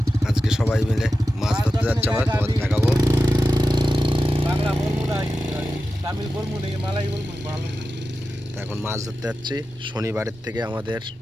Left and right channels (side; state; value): both; normal; correlation 0.93